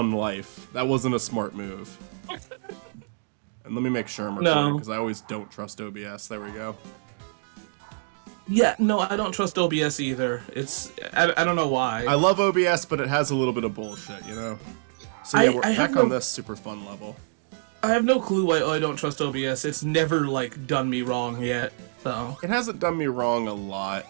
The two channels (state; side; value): silent; left; digital silence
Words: life. That wasn't a smart move. And let me make sure I'm recording, because I always don't trust OBS. There we go. Yeah, no, I don't trust OBS either. I don't know why. I love OBS, but it has a little bit of bullshit, you know? So yeah, we're back on this super fun level. I have no clue why I don't trust OBS. It's never, like, done me wrong yet, so... It hasn't done me wrong a lot.